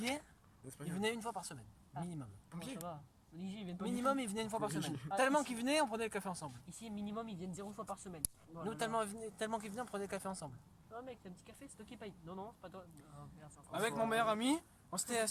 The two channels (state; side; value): identical; both; correlation 1.00